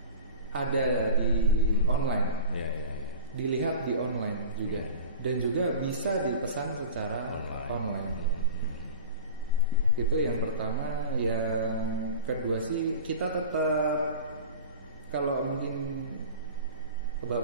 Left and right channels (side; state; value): both; inverted; correlation -0.35